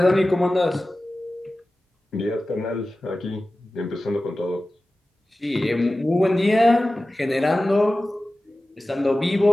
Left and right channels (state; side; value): normal; both; correlation 0.96